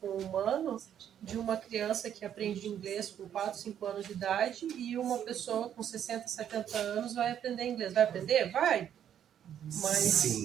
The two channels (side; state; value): left; quieter; 9.7 dB